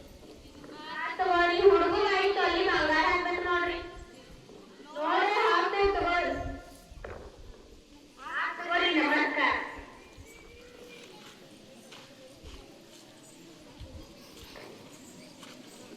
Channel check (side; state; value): both; identical; correlation 1.00